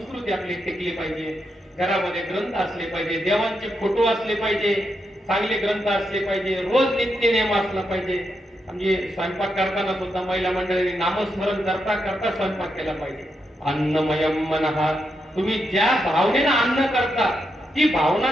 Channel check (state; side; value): normal; both; correlation 0.83